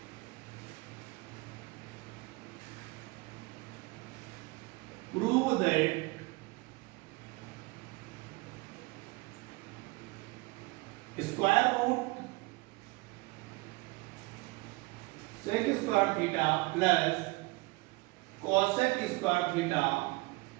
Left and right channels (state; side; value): quieter; left; 23.8 dB